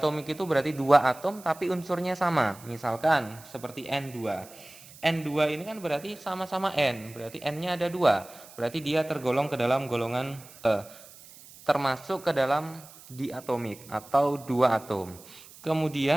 itu berarti dua atom tapi unsurnya sama. Misalkan seperti N2. N2 ini kan berarti sama-sama N, berarti N-nya ada dua. Berarti dia tergolong ke dalam golongan termasuk ke dalam diatomik atau dua atom.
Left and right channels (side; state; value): right; noise; hiss, 20 dB below the sound